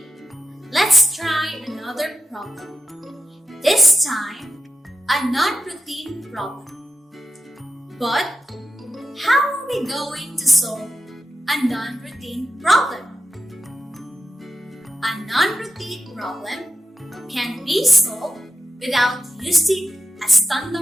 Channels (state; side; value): normal; both; correlation 0.91